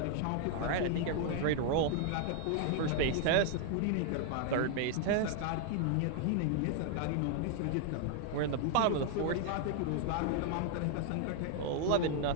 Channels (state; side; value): different; both; correlation 0.00